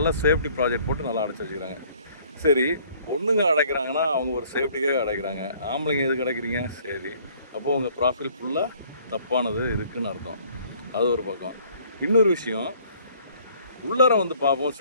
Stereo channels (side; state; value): both; inverted; correlation -0.58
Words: சேஃப்டி ப்ராஜெக்ட் போட்டு நல்லா அடைச்சி வச்சுக்கிறாங்க. சரி, பொண்ணுங்க அடைக்கிறாங்கன்னா அவங்க ஒரு சேஃப்டிக்காக அடைக்கிறாங்க. ஆம்பளைங்க எதுக்கு அடைக்கிறீங்க? சரி, அப்போது உங்கள் ப்ராஃபில் ஃபுல்லாக தப்பானது இருக்குதுன்னு அர்த்தம். அது ஒரு பக்கம். இன்னொரு விஷயம், உள்ளார வந்து பார்ப்போம்